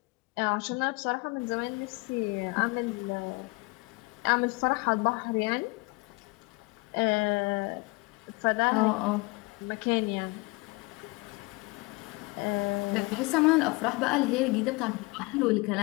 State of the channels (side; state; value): right; quieter; 26.0 dB